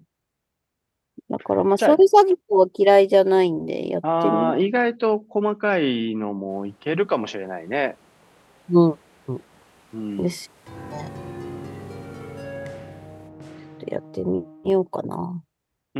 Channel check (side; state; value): both; identical; correlation 1.00